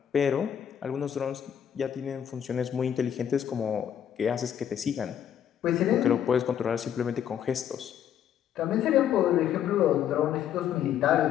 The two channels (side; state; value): right; quieter; 9.5 dB